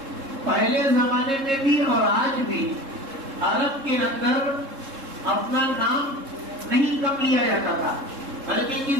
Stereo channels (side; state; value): left; late; 3.7 ms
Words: پہلے زمانے میں بھی اور آج بھی عرب کے اندر اپنا نام نہیں کم لیا جاتا تھا، بلکہ